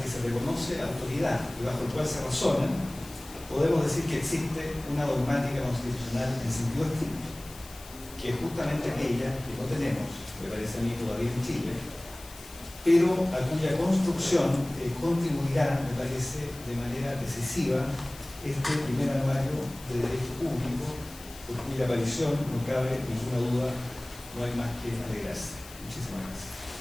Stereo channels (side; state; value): left; noise; hiss, 18 dB below the sound